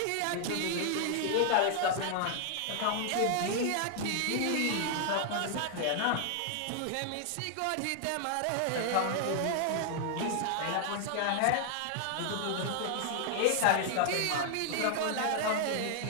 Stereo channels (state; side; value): different; both; correlation 0.00